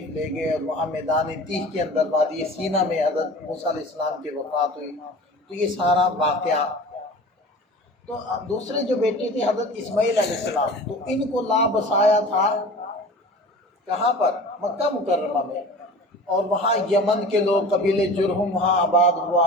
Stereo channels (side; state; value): both; normal; correlation 0.39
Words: لے گئے، اور وہاں میدان تیہ کے اندر وادی سینا میں حضرت موسیٰ علیہ السلام کی وفات ہوئی۔ تو یہ سارا واقعہ۔ تو دوسرے جو بیٹے تھے حضرت اسماعیل علیہ السلام، تو ان کو لا بسایا تھا کہاں پر؟ مکہ مکرمہ میں۔ اور وہاں یمن کے لوگ قبیلے جرہم وہاں آباد ہوا،